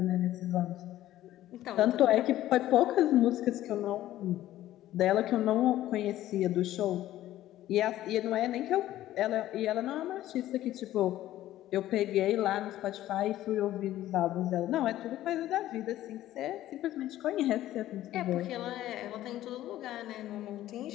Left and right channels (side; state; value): right; quieter; 13.9 dB